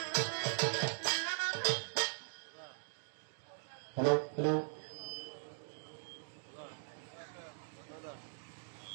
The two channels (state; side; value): silent; left; digital silence